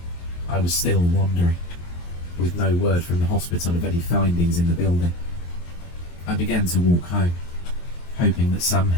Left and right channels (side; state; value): right; late; 23 ms